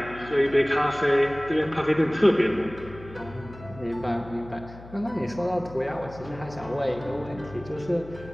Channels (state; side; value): noise; left; hum, 17 dB below the sound